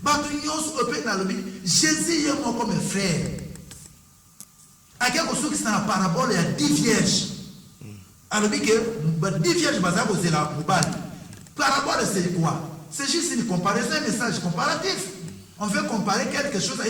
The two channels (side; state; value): both; identical; correlation 1.00